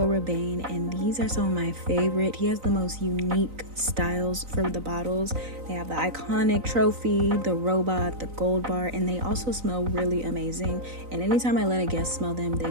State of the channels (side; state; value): left; late; 3.9 ms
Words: Rabanne, and these are some of my favorite. He has the most unique styles for the bottles. They have the iconic trophy, the robot, the gold bar, and they also smell really amazing. And anytime I let a guest smell them,